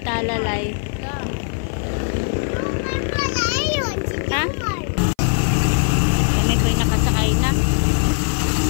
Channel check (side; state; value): right; silent; 55 dB below the other